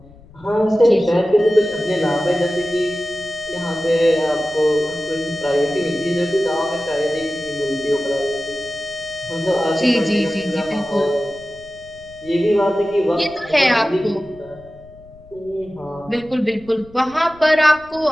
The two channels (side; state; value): left; noise; rumble, 24 dB below the sound